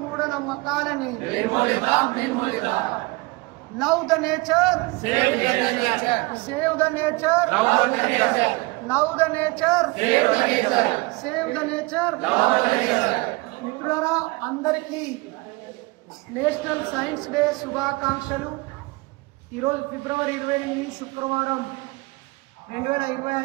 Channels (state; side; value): quieter; left; 24.4 dB